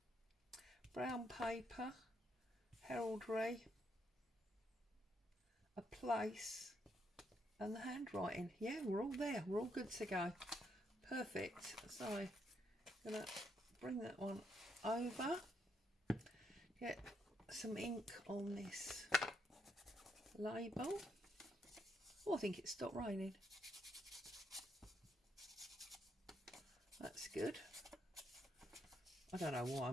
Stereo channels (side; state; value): both; normal; correlation 0.76